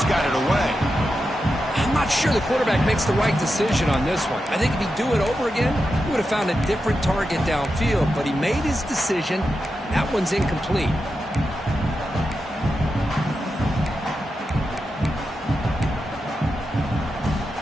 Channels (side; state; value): both; normal; correlation 0.89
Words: got it away. I'm not sure the quarterback makes the right decision on this one. I think if he'd do it over again, he would have found a different target downfield, but he made his decision. That one's incomplete.